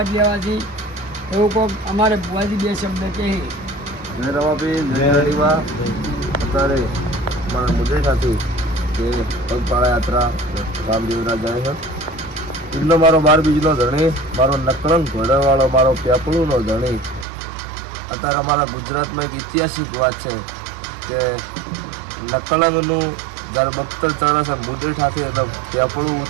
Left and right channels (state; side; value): drops out; left; at 17.2 s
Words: લેવાથી એવું કોક અમારે ભુવાજી બે શબ્દ કહે। જય રવાપી, જય હરિવા। અત્યારે મારા મુદ્દે સાથી કે પગપાળા યાત્રા રામદેવરા જાય છે। એટલો મારો 12 બીજનો ધણી, મારો નકળંગ ઘોડાવાળો, મારો પેપળુનો ધણી। અત્યારે અમારા ગુજરાતમાં એક ઐતિહાસિક વાત છે કે નકળંગનું જ્યારે બખ્તર ચડે છે મુદ્દે સાથે એટલે પેપળું